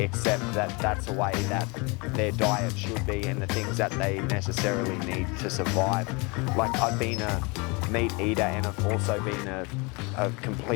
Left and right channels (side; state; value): right; quieter; 28.9 dB